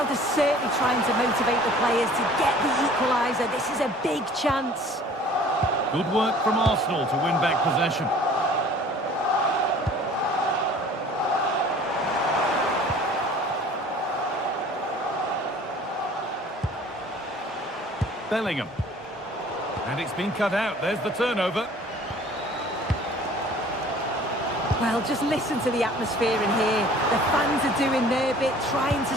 is certainly trying to motivate the players to get the equaliser. This is a big chance. Good work from Arsenal to win back possession. Bellingham. And it's been cut out. There's the turnover. Well, just listen to the atmosphere in here. The fans are doing their bit, trying to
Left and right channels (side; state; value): both; normal; correlation 0.50